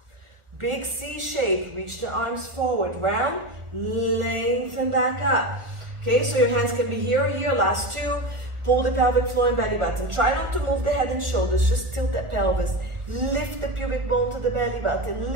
Big C shape, reach the arms forward, round, lengthen back up. Okay, so your hands can be here or here, last two. Pull the pelvic floor and belly button. Try not to move the head and shoulders, just tilt that pelvis. Lift the pubic bone to the belly button.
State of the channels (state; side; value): late; left; 1.4 ms